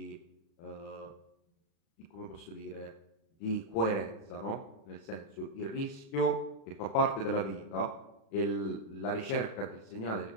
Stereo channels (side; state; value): right; late; 36 ms